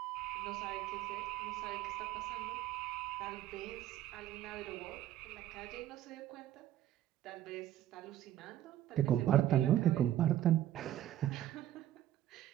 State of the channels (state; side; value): quieter; left; 12.6 dB